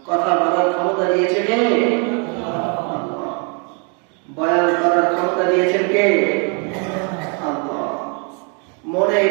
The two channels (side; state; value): left; quieter; 36.5 dB